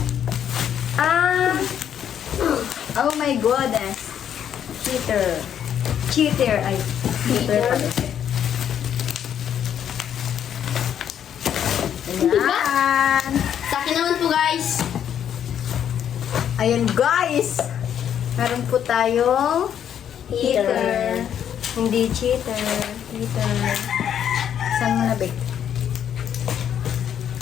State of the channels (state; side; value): quieter; right; 9.3 dB